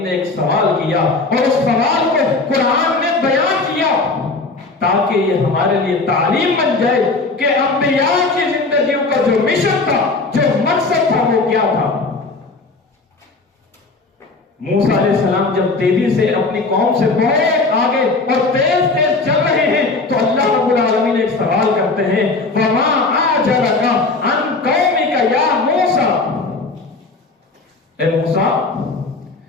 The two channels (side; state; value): right; quieter; 3.6 dB